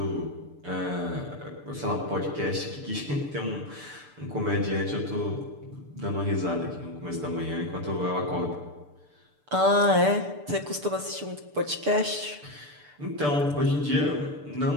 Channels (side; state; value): left; late; 6.8 ms